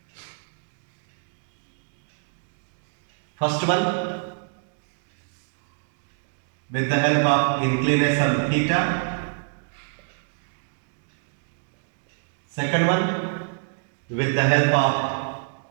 First one, with the help of inclination theta. Second one, with the help of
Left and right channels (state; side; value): silent; left; digital silence